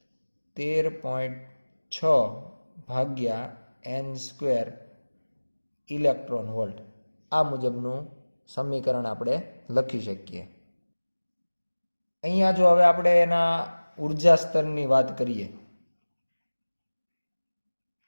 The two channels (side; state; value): both; inverted; correlation -1.00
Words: ભાગ્યા n² ઇલેક્ટ્રોન વોલ્ટ, આ મુજબનું સમીકરણ આપણે લખી શકીએ. અહીંયા જો હવે આપણે એના ઉર્જા સ્તરની વાત કરીએ